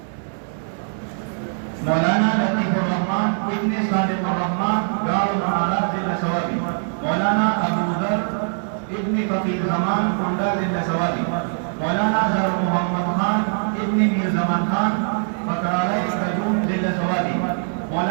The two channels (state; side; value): silent; left; digital silence